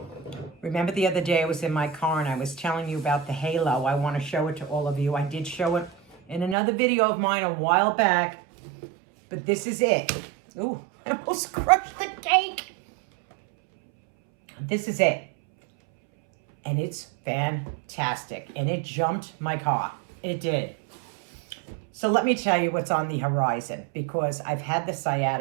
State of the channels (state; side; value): drops out; left; at 6.6 s